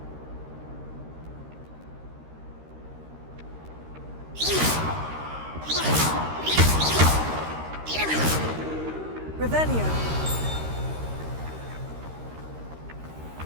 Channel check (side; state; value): left; late; 13 ms